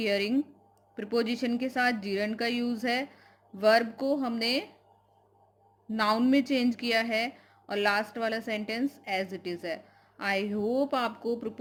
प्रीपोजिशन के साथ जीरंड का यूज़ है। वर्ब को हमने नाउन में चेंज किया है और लास्ट वाला सेंटेंस एज इट इज़ है। आई होप आपको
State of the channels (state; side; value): identical; both; correlation 1.00